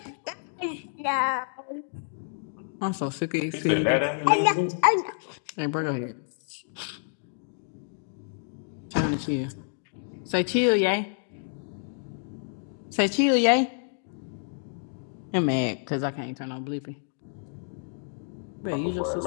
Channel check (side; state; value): right; silent; digital silence